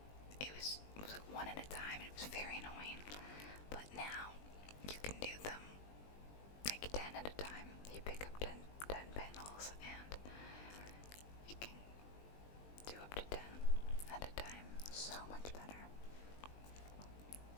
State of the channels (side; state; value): right; late; 20 ms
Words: it was like one at a time, and it was very annoying. But now you can do them like 10 at a time. You pick up 10 panels and you can do up to 10 at a time. So much better.